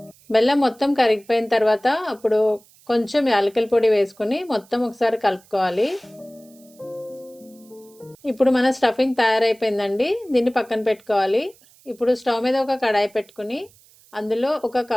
బెల్లం మొత్తం కరిగిపోయిన తర్వాత అప్పుడు కొంచెం యాలకుల పొడి వేసుకుని మొత్తం ఒకసారి కలుపుకోవాలి. ఇప్పుడు మన స్టఫింగ్ తయారైపోయిందండి. దీన్ని పక్కన పెట్టుకోవాలి. ఇప్పుడు స్టవ్ మీద ఒక కడాయి పెట్టుకుని అందులో 1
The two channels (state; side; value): noise; right; hiss, 28 dB below the sound